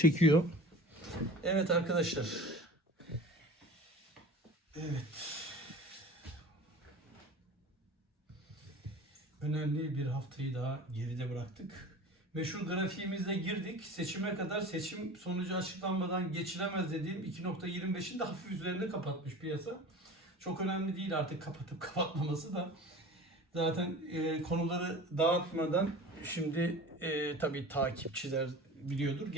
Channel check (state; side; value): normal; both; correlation 0.38